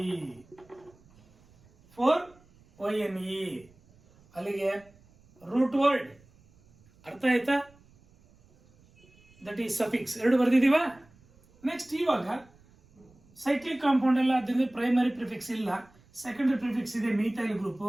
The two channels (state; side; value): noise; right; rumble, 29 dB below the sound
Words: 4 YNE. ಅಲ್ಲಿಗೆ ರೂಟ್ ವರ್ಡ್. ಅರ್ಥ ಆಯ್ತಾ. That is suffix. ಎರಡು ಬರ್ದಿದೀವ. ನೆಕ್ಸ್ಟ್ ಇವಾಗ ಸೈಕ್ಲಿಕ್ ಕಾಂಪೌಂಡ್ ಎಲ್ಲ, ಅದರಿಂದ ಪ್ರೈಮರಿ ಪ್ರಿಫಿಕ್ಸ್ ಇಲ್ಲ, ಸೆಕೆಂಡರಿ ಪ್ರಿಫಿಕ್ಸ್ ಇದೆ. ಮೀಥೈಲ್ ಗ್ರೂಪ್